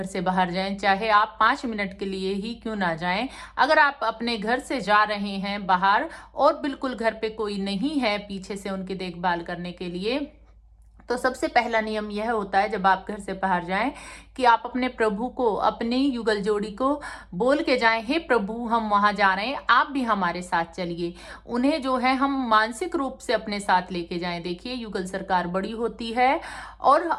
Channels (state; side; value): identical; both; correlation 1.00